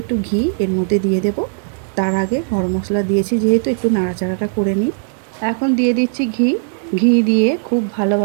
একটু ঘি এর মধ্যে দিয়ে দেব। তার আগে গরম মশলা দিয়েছি যেহেতু একটু নাড়াচাড়াটা করে নিই। এখন দিয়ে দিচ্ছি ঘি। ঘি দিয়ে খুব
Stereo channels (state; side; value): silent; left; digital silence